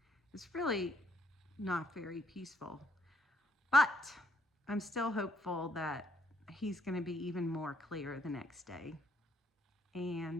it's really not very peaceful. But I'm still hopeful that he's going to be even more clear the next day.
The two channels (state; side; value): normal; both; correlation 0.71